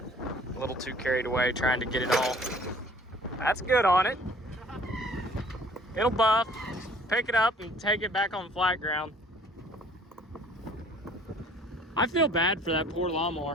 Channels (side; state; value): both; normal; correlation 0.54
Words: little too carried away trying to get it all. That's good on it. It'll buff, pick it up and take it back on flat ground. I feel bad for that poor